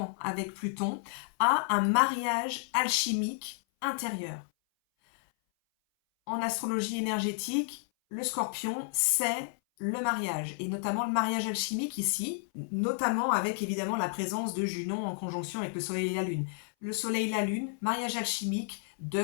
avec Pluton, à un mariage alchimique intérieur. En astrologie énergétique, le Scorpion, c'est le mariage, et notamment le mariage alchimique ici, notamment avec évidemment la présence de Junon en conjonction avec le Soleil et la Lune. Le Soleil et la Lune, mariage alchimique de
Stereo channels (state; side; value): silent; right; 57 dB below the other